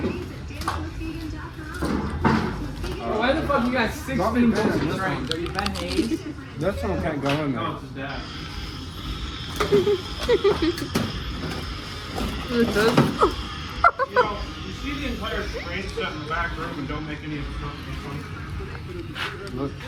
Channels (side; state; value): both; identical; correlation 1.00